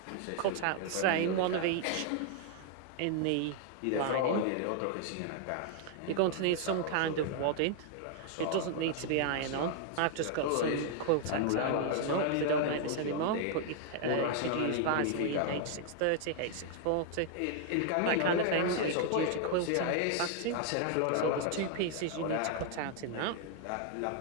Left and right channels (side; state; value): both; different; correlation 0.00